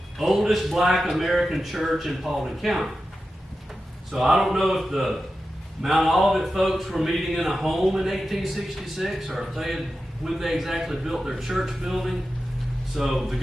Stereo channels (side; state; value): both; normal; correlation 0.92